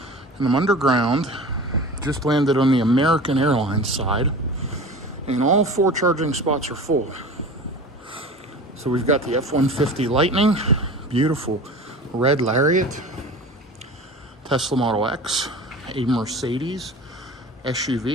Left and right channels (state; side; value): normal; both; correlation 0.36